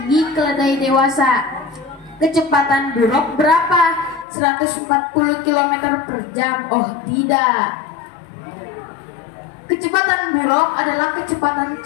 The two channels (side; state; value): right; drops out; at 4.2 s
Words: keledai dewasa. Kecepatan buruk berapa? 140 km per jam. Oh tidak. Kecepatan buruk adalah kecepatan